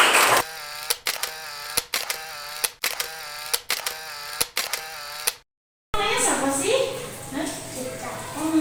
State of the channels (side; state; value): both; identical; correlation 1.00